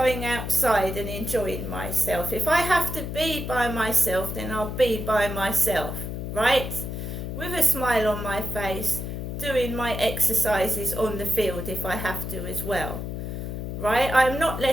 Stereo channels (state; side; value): noise; left; hum, 5 dB below the sound